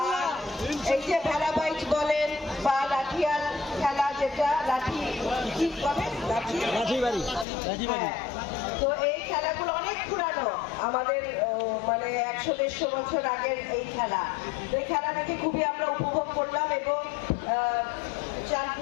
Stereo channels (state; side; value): drops out; right; at 7.5 s